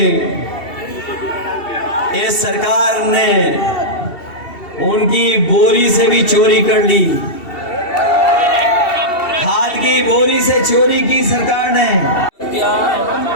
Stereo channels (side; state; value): right; late; 2.7 ms